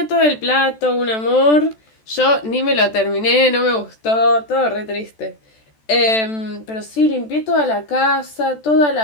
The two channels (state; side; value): late; right; 14 ms